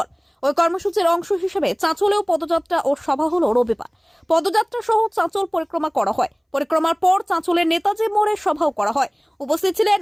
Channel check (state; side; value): identical; both; correlation 1.00